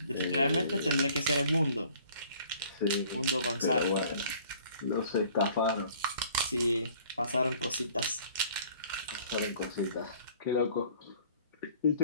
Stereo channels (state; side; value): inverted; both; correlation -0.54